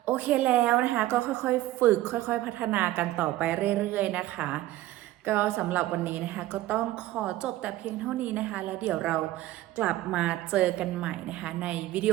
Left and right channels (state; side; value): quieter; left; 15.9 dB